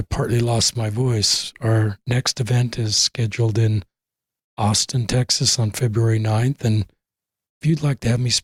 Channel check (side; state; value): both; identical; correlation 1.00